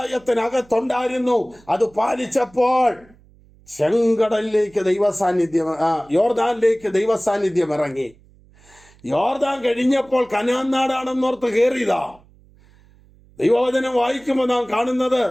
അത് പാലിച്ചപ്പോൾ ചെങ്കടലിലേക്ക് യോർദാനിലേക്ക് ദൈവസാന്നിധ്യം ഇറങ്ങി. യോർദാൻ കഴിഞ്ഞപ്പോൾ കനാൻ നാടാണെന്നോർത്ത് കയറിയതാ. ദൈവവചനം വായിക്കുമ്പോൾ നാം കാണുന്നത്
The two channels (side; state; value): right; noise; hum, 28 dB below the sound